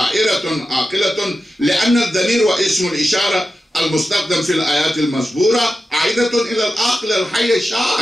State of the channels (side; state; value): both; normal; correlation 0.92